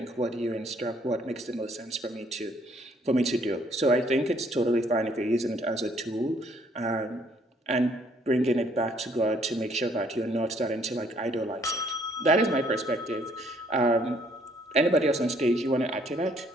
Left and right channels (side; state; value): both; normal; correlation 0.64